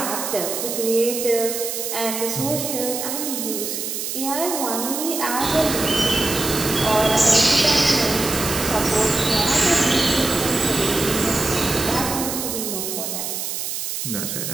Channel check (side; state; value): right; noise; hiss, 4 dB below the sound